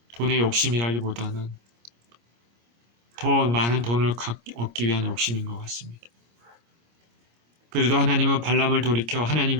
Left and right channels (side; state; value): left; late; 25 ms